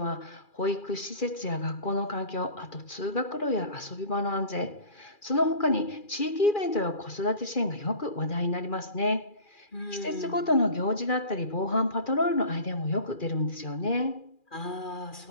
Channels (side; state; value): right; late; 2.4 ms